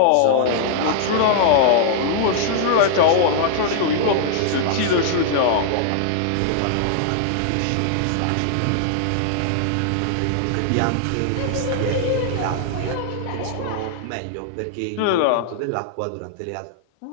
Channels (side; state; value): both; different; correlation -0.01